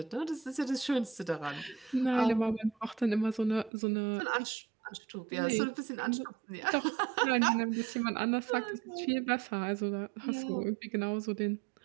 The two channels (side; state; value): left; drops out; at 3.7 s